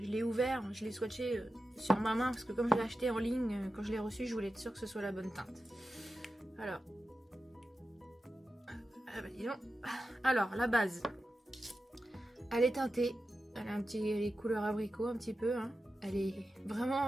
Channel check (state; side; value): normal; both; correlation 0.92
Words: ouvert, je l'ai swatché sur ma main, parce que comme je l'ai acheté en ligne, quand je l'ai reçu, je voulais être sûre que ce soit la bonne teinte. Alors, la base, elle est teintée, elle a les couleurs abricot un petit peu, hein. Elle est